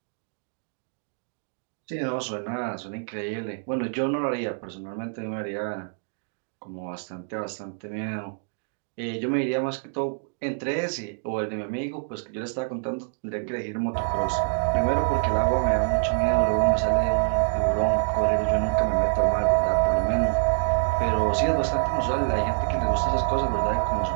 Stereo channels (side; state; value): left; silent; digital silence